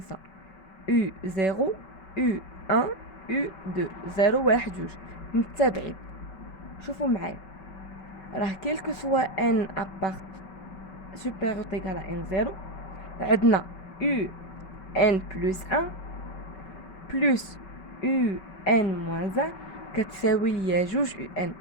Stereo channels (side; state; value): right; late; 5.2 ms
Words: يو 0 يو 1 يو 2 0 1 2 متتابعين. شوفوا معايا، راه كيلكو سوا ان ابارت سوبيريور ايغال ان 0 عندنا يو ان بلس 1 بلس يو ان موان 1 كتساوي ليا جوج يو ان.